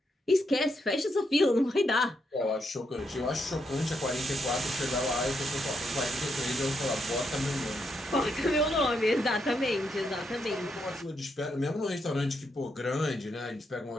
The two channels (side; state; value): both; normal; correlation 0.80